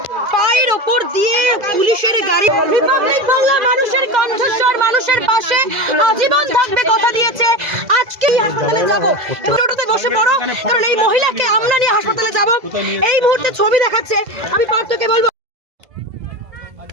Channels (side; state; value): left; late; 2.0 ms